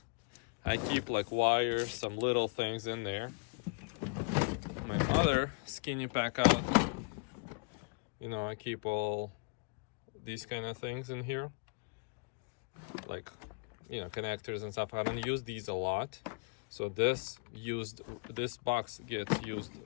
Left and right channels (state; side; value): quieter; right; 35.3 dB